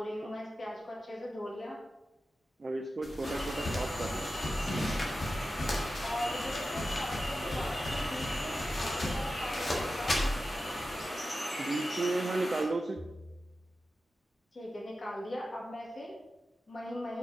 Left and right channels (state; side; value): normal; both; correlation 0.92